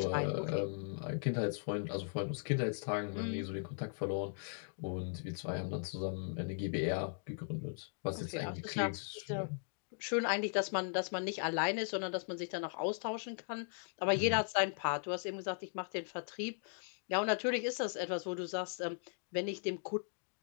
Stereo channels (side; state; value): right; silent; digital silence